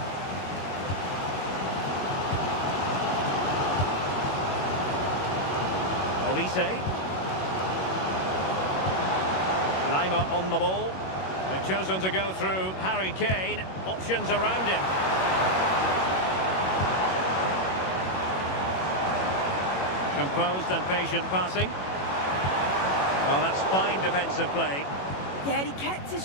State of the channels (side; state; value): right; late; 21 ms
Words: Olise. Lima on the ball. They've chosen to go through Harry Kane. Options around him. Composed and patient passing. Well, that's fine defensive play. Yeah, he kept his